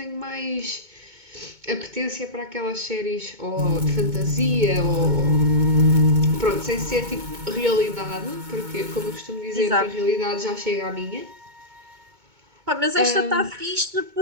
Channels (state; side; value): late; left; 2.2 ms